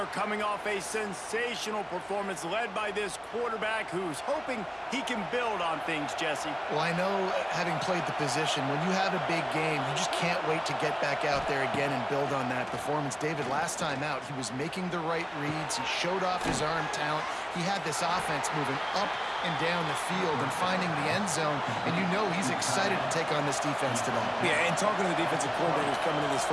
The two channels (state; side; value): identical; both; correlation 1.00